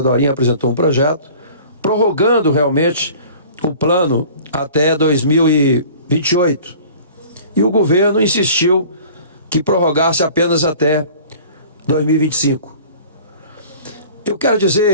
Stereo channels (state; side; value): inverted; both; correlation -0.46